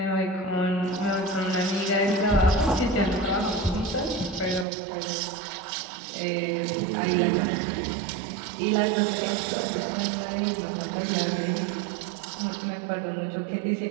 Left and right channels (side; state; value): left; drops out; at 4.7 s